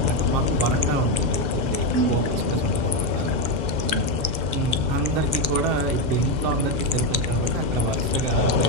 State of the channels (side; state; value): left; late; 6.8 ms